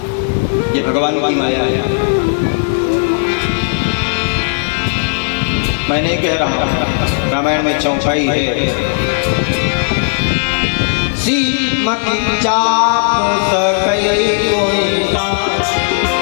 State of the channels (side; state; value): right; silent; digital silence